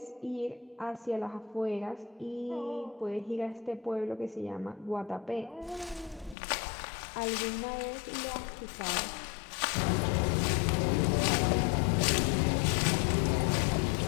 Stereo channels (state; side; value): drops out; right; at 6.4 s